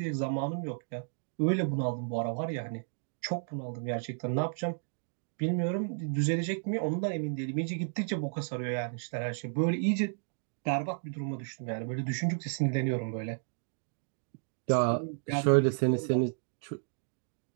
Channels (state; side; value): silent; left; digital silence